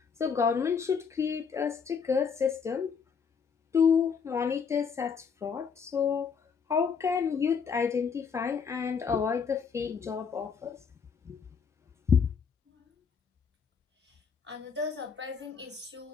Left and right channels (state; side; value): quieter; right; 6.2 dB